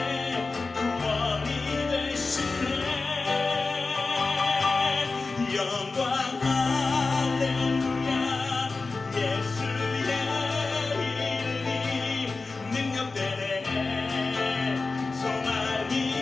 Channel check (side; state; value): right; quieter; 3.9 dB